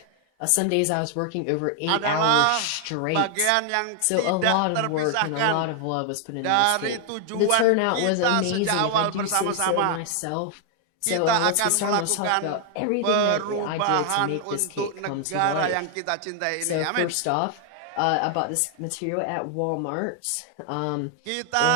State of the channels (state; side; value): different; both; correlation 0.00